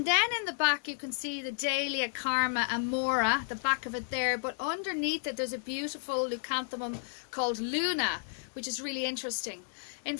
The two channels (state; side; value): silent; right; 56 dB below the other